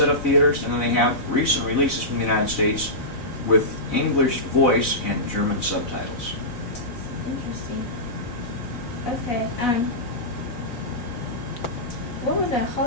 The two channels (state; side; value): late; right; 4.0 ms